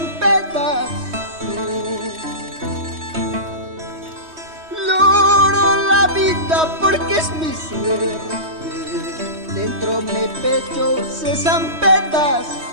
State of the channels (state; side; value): late; left; 3.2 ms